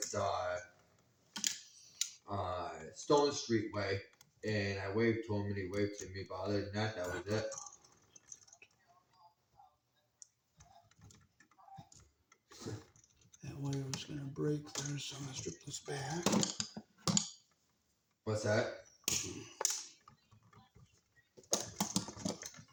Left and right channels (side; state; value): both; identical; correlation 1.00